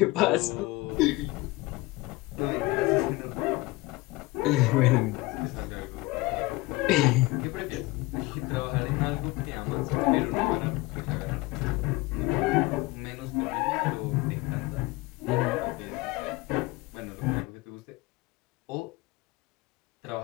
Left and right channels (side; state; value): right; quieter; 21.3 dB